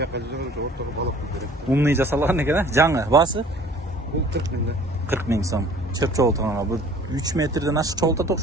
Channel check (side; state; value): both; normal; correlation 0.51